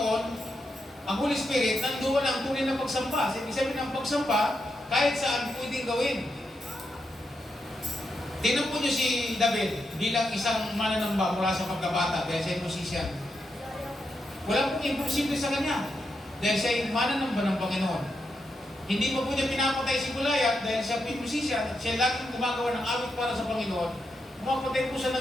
ang Holy Spirit, nandoon ang tunay na pagsamba. Ibig sabihin ng pagsamba, kahit saan pwedeng gawin. Tingnan po niyo si David bilang isang mananamba mula sa pagkabata dahil siya ay musician. Wala pong imposible sa kanya dahil siya ay mananamba ng Panginoon. Hindi pa po niya pinapatay si Goliath dahil siya ay musician at siya laging gumagawa ng awit para sa Panginoon. Pumapatay po siya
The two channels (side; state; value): both; normal; correlation 0.84